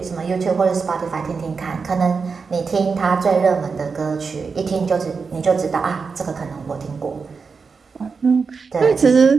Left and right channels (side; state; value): left; quieter; 5.1 dB